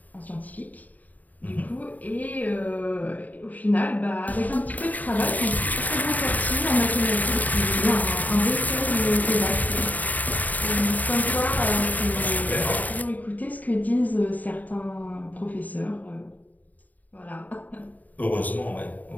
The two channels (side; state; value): right; late; 0.078 ms